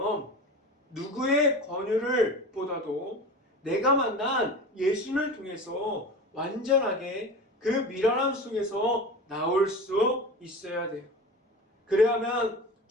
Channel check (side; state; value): both; normal; correlation 0.32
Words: 누구의 권유를 보다도 내가 만난 예수님을 통해서 완전하게 그 미련함 속에서 나올 수 있어야 돼요. 그래야만